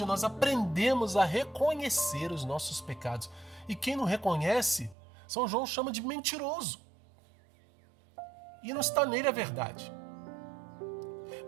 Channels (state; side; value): drops out; left; at 5.0 s